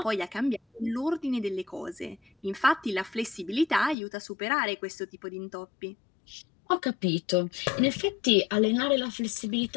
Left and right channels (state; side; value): drops out; right; at 4.0 s